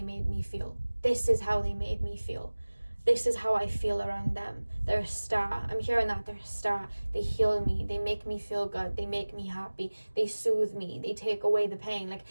made me feel. This is how they made me feel. This is how I feel around them. They're a star. I'm hearing that. They're a star. They heal me. They make me feel good. They make me happy. They soothe me. They take away the pain. Like,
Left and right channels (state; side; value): inverted; both; correlation -1.00